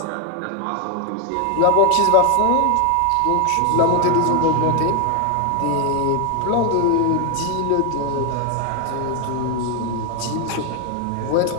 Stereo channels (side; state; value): both; different; correlation 0.01